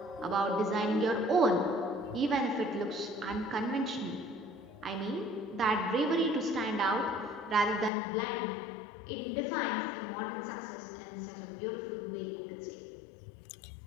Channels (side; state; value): right; drops out; at 7.9 s